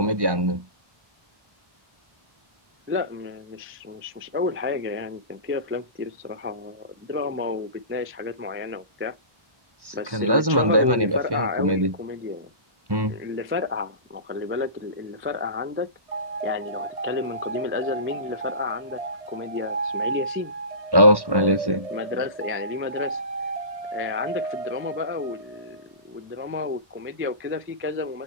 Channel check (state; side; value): late; left; 1.1 ms